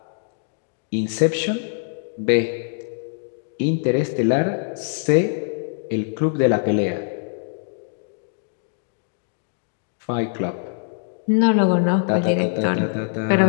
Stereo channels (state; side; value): silent; right; digital silence